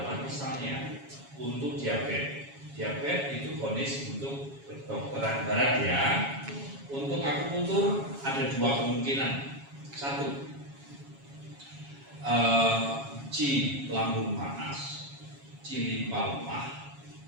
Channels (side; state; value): left; late; 7.3 ms